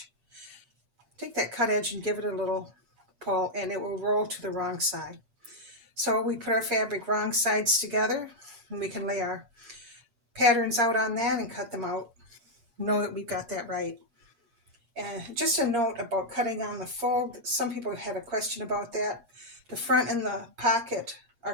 take that cut edge and give it a little pull and it will roll to the wrong side. So we put our fabric wrong sides together and we can lay our patterns out on that and cut them out. Know that we've got that right. And just a note about cutting on the fold. Some people had a question about that. The front and the pocket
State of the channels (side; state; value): left; late; 8.5 ms